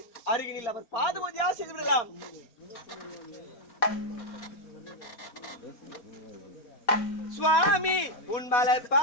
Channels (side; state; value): right; late; 4.2 ms